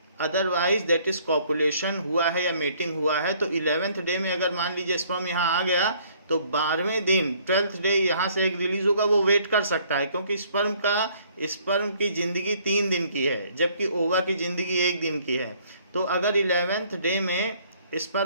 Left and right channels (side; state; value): both; inverted; correlation -0.61